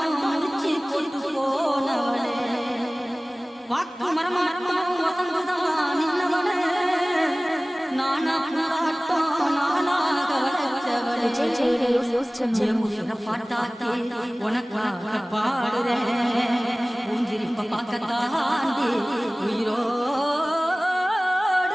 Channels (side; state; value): both; normal; correlation 0.98